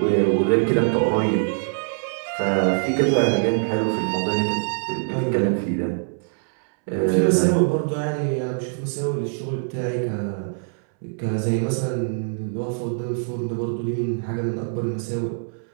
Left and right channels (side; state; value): left; silent; 63 dB below the other